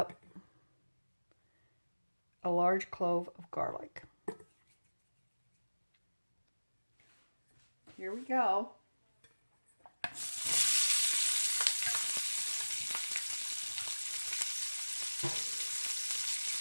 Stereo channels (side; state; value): both; inverted; correlation -1.00